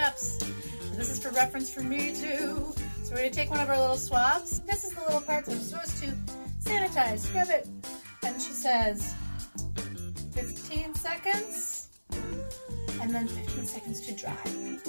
This is for reference for me, too. So we're going to take one of our little swabs. This is the little part that I'm supposed to sanitize, scrub it. And she says 15 seconds, and then 15 seconds to dry.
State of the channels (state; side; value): inverted; both; correlation -1.00